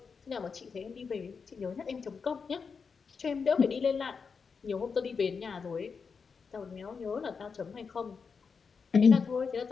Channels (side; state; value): right; quieter; 5.5 dB